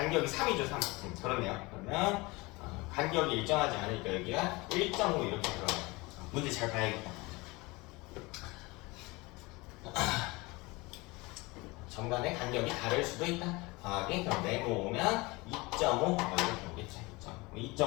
3이죠 3 그렇네요. 그러면 간격이 일정하지 않으니까 여기가 1.5 이렇게 들어가요. 문제 잘 봐야겠다. 정간의 간격이 다를 수도 있다. 더하기 그럼 네모 오면 2.5 이렇게 오겠지.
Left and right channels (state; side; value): quieter; right; 23.8 dB